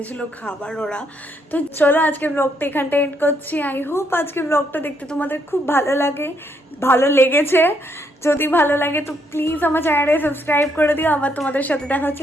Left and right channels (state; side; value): normal; both; correlation 0.74